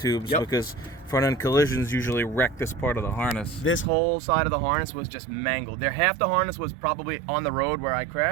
because front end collisions usually wreck this part of the harness. This whole side of the harness was just mangled. Half the harness was probably on the road where I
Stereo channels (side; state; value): left; drops out; at 3.9 s